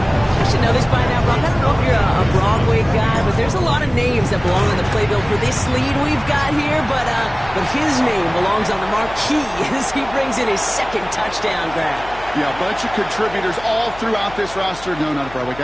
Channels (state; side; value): noise; left; hum, 18 dB below the sound